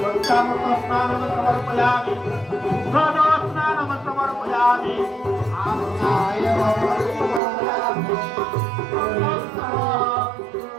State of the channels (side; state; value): left; drops out; at 7.4 s